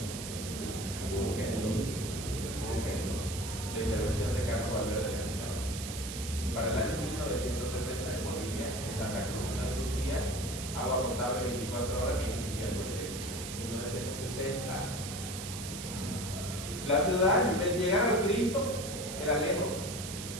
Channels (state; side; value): noise; right; hiss, 8 dB below the sound